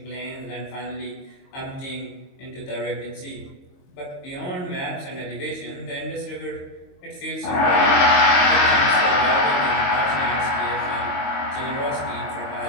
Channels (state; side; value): late; right; 22 ms